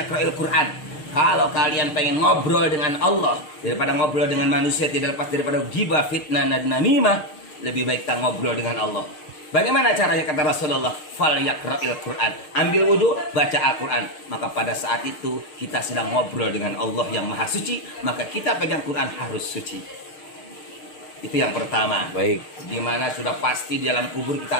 Quran. Kalau kalian pengen ngobrol dengan Allah daripada ngobrol dengan manusia, tidak lepas daripada ghibah, fitnah, dan namimah, lebih baik kita ngobrol dengan Allah. Bagaimana caranya kata Rasulullah? Falyaqra'il Quran. Ambil wudhu, baca Al-Quran. Maka pada saat itu kita sedang ngobrol dengan Allah yang maha suci. Maka kita pegang Quran harus suci. Itu yang pertama. Baik. Dimana sudah pasti di dalam kubur kita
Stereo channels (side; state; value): right; late; 6.5 ms